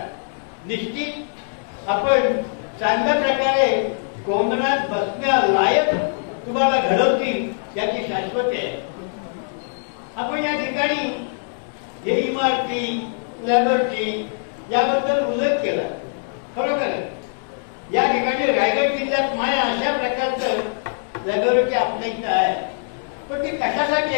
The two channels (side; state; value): right; silent; digital silence